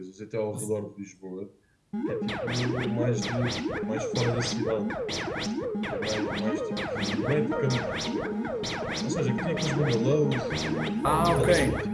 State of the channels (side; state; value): both; identical; correlation 1.00